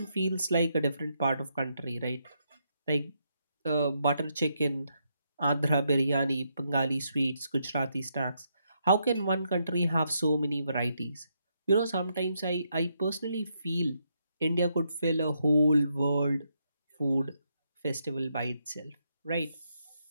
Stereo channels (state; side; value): inverted; both; correlation -0.79